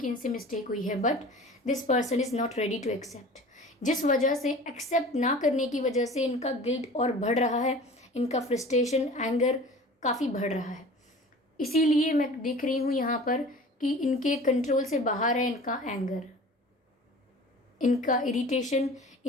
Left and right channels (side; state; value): both; normal; correlation 0.42